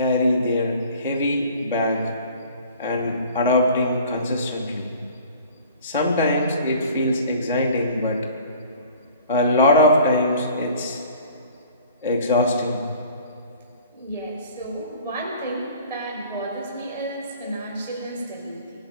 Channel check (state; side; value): inverted; both; correlation -0.48